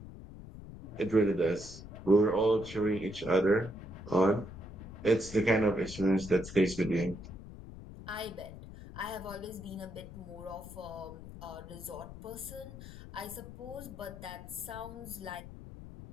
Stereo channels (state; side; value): noise; left; rumble, 14 dB below the sound